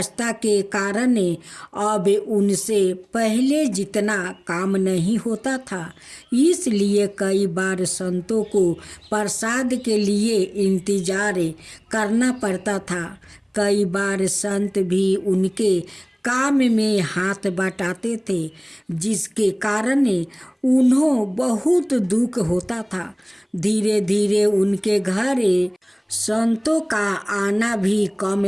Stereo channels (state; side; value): identical; both; correlation 1.00